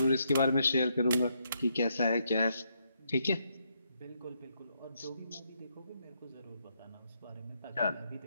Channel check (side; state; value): both; inverted; correlation -0.77